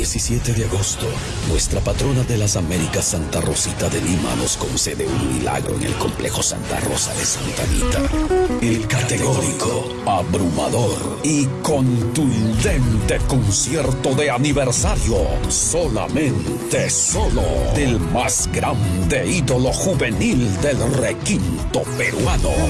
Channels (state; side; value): identical; both; correlation 1.00